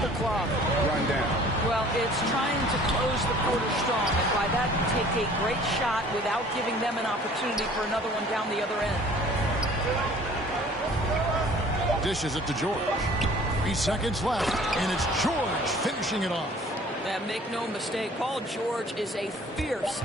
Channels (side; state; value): both; normal; correlation 0.51